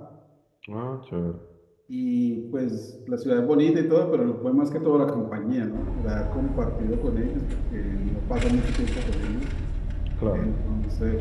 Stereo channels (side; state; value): both; identical; correlation 1.00